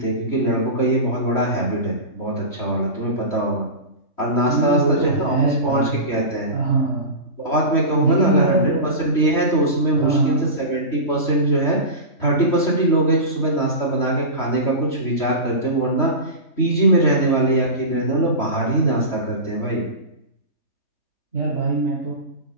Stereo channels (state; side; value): late; right; 3.1 ms